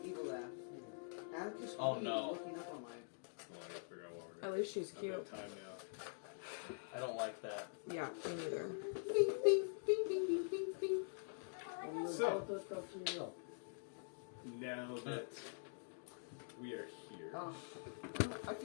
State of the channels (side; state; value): right; silent; digital silence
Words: evil laugh. Atticus Oh, Lee no. looking up on my. Well, I gotta figure out what we're At gonna least she's do. I've cute. got time now. I don't like that. Yeah, me neither. Bing, bing, bing, bing, bing, bing, bing. So, That's up to you. now that we are here, Oh, I